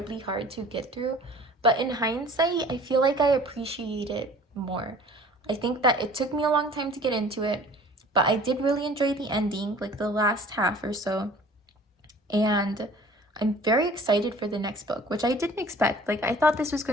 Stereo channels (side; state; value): both; normal; correlation 0.48